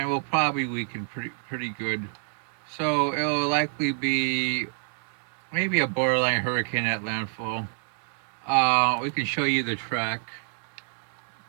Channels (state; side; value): silent; left; 60 dB below the other